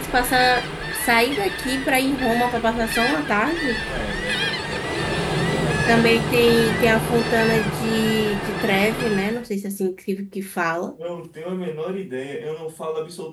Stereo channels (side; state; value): both; identical; correlation 1.00